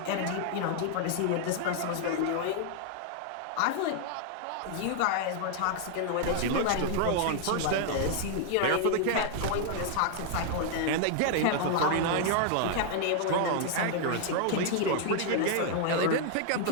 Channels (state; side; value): different; both; correlation 0.00